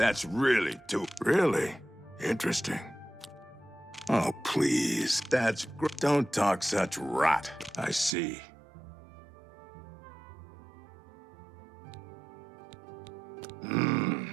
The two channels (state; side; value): drops out; left; at 8.2 s